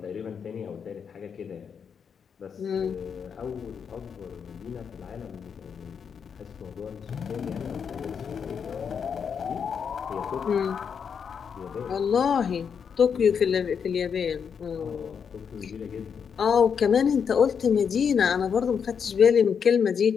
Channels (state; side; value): quieter; right; 6.9 dB